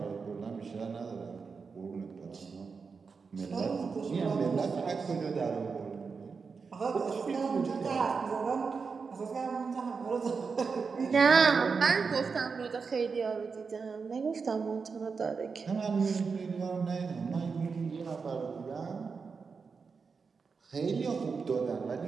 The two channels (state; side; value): quieter; left; 5.2 dB